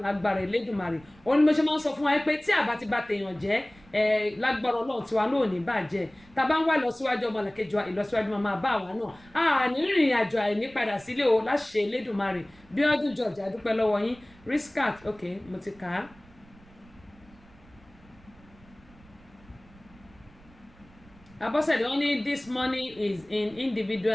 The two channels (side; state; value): right; noise; rumble, 26 dB below the sound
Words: lágbára Elédùmarè òun ni mo ṣe máa ń sọ fún wa pé tí àbá ti bá tèèyàn jẹ́ lágbára Ọlọ́run tiwa náà ò ní bàjẹ́ tá a bá ń wá ìlọsíwájú ọmọlàkejì wa ìlọsíwájú máa bá wa náà a ní rìnrìn àjò àìní padà sílé o láṣẹ Elédùmarè Bíọ́dún George adúpẹ́ lọ́wọ́ yín Riskat ok mo ti kà á. Abọ́sẹ̀dé wọ́n ní this money is in